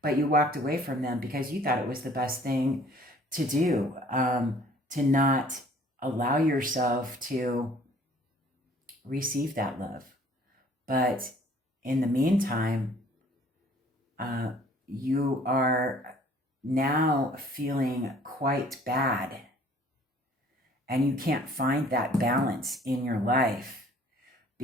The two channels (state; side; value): normal; both; correlation 0.55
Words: But you walked away from them because you thought it was the best thing to do, to not allow yourself to receive that love. But in the meantime, you are now feeling quite bad, and you can't find that balance in your life